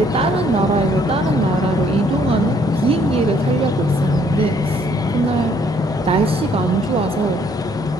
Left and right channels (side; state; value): both; normal; correlation 0.65